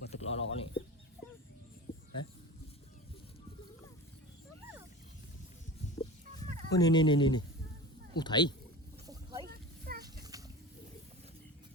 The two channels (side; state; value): both; normal; correlation 0.33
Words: thực lo này. Hả? Ôi nè. Ủa thấy.